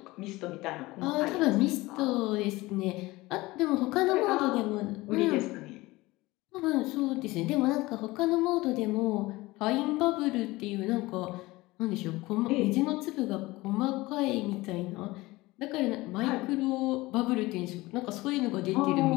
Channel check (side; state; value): right; quieter; 20.3 dB